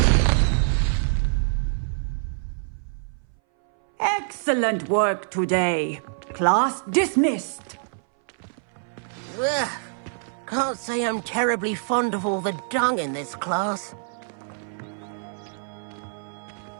Excellent work today. Class dismissed. Ugh. Can't say I'm terribly fond of all the dung in this class.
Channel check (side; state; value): left; silent; 60 dB below the other